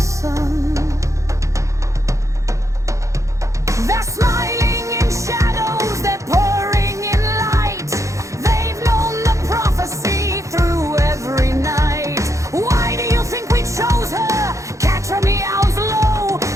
They're smiling in shadows, they're pouring in light. They've known the prophecy through every night. Why do you think we chose her? Catra meows low.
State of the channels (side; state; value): left; late; 0.15 ms